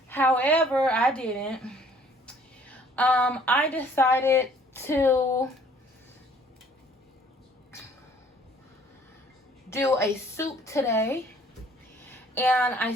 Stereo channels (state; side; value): normal; both; correlation 0.57